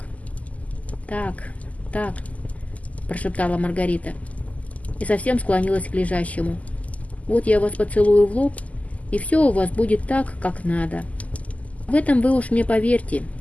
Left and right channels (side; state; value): right; late; 0.073 ms